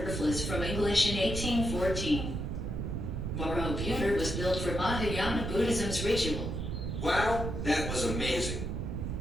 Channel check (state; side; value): noise; right; rumble, 3 dB below the sound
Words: from English in 1814. Borobudur was built for Mahayana Buddhism's ritual. Wow, that was amazing.